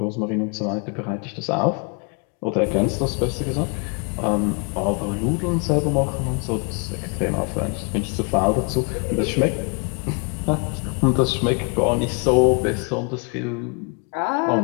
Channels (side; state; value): right; quieter; 34.4 dB